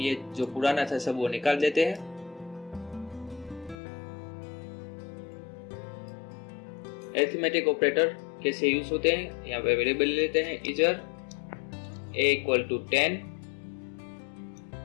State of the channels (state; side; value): drops out; right; at 3.8 s